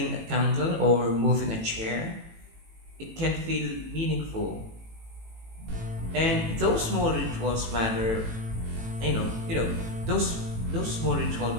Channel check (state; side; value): late; left; 18 ms